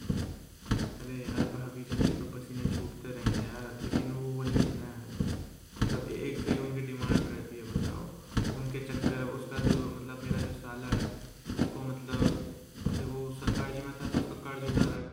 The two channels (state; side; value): identical; both; correlation 1.00